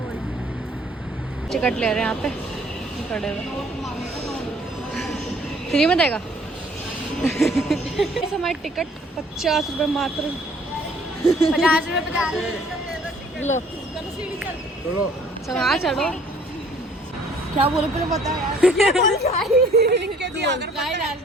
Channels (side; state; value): both; normal; correlation 0.58